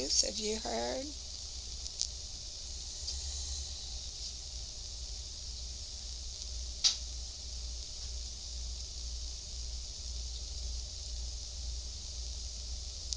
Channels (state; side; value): identical; both; correlation 1.00